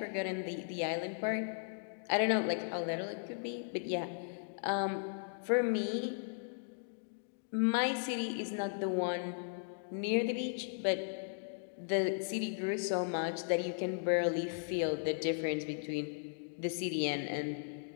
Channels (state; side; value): silent; right; digital silence